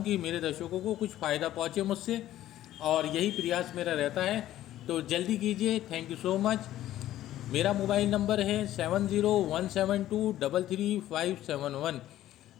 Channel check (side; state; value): right; quieter; 13.5 dB